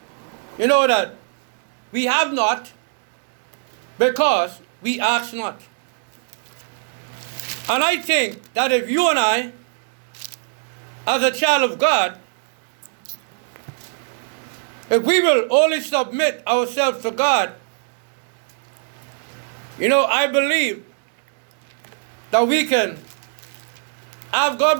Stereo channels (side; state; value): left; silent; digital silence